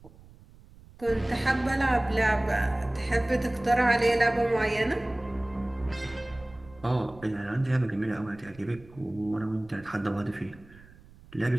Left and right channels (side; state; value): right; noise; rumble, 23 dB below the sound